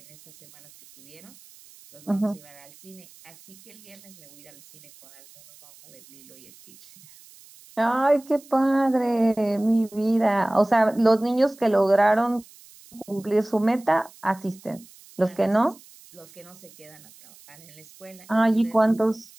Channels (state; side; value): noise; right; hiss, 24 dB below the sound